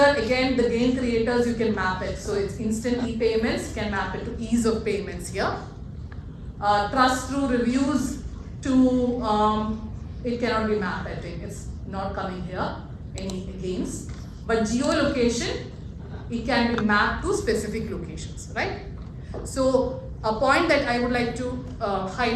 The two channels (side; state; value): both; identical; correlation 1.00